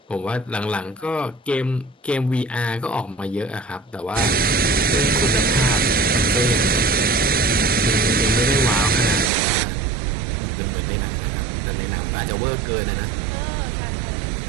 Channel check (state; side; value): drops out; left; at 9.3 s